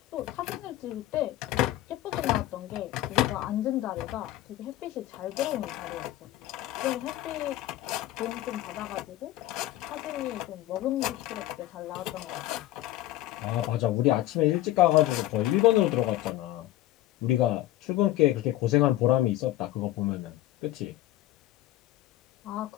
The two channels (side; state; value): right; quieter; 14.9 dB